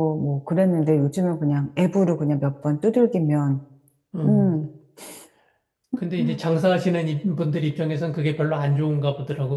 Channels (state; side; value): identical; both; correlation 1.00